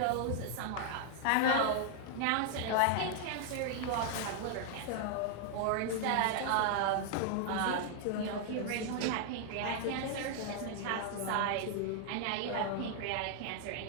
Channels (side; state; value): both; different; correlation 0.00